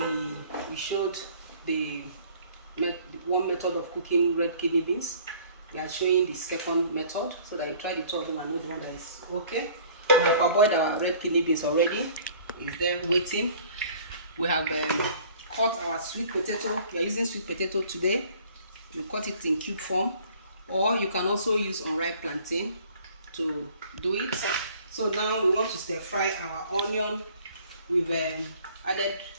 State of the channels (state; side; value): inverted; both; correlation -0.53